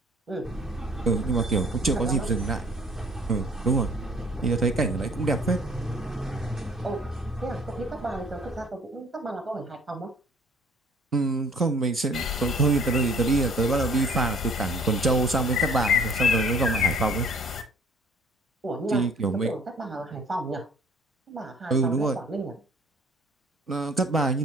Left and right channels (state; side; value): normal; both; correlation 0.54